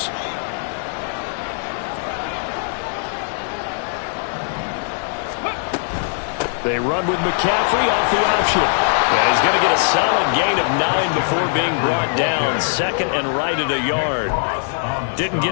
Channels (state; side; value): silent; right; digital silence